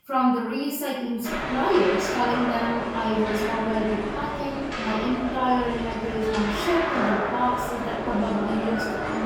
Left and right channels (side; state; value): both; identical; correlation 1.00